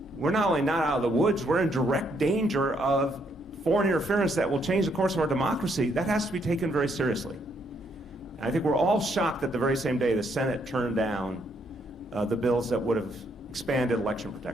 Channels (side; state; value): both; normal; correlation 0.73